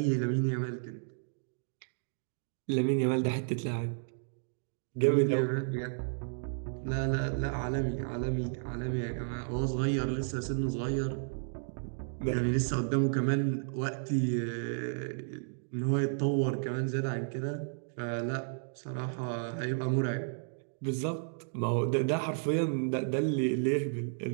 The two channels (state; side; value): silent; left; digital silence